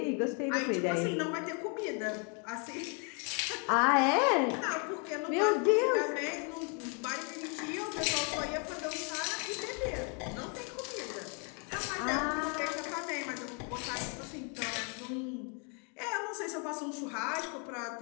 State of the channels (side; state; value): right; quieter; 37.5 dB